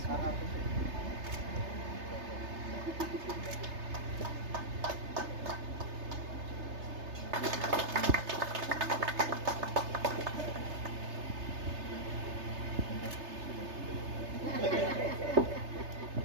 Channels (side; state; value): left; late; 3.3 ms